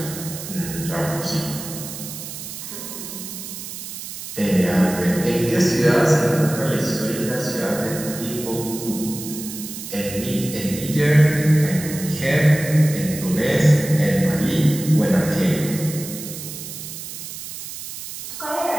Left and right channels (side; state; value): right; noise; hiss, 10 dB below the sound